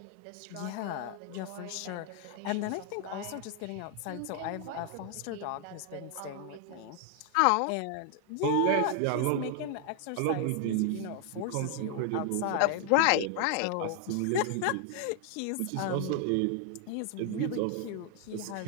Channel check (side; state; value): both; different; correlation 0.00